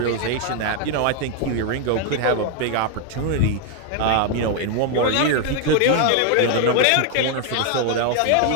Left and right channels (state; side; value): different; both; correlation 0.01